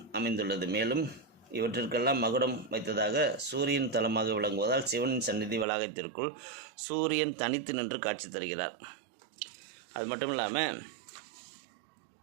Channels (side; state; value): left; drops out; at 5.7 s